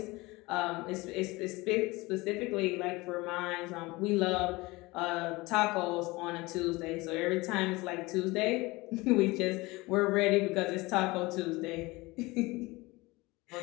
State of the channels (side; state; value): right; quieter; 22.3 dB